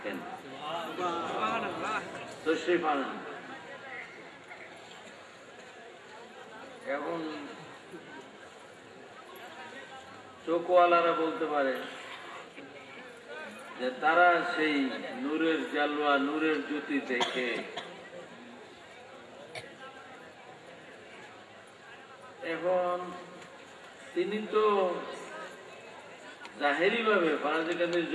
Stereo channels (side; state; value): both; identical; correlation 1.00